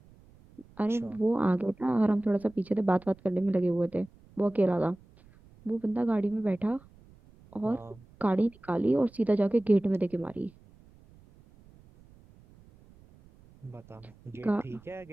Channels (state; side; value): noise; right; rumble, 26 dB below the sound